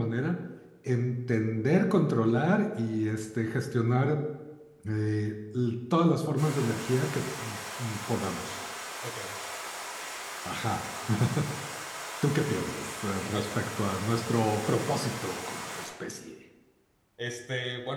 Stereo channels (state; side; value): identical; both; correlation 1.00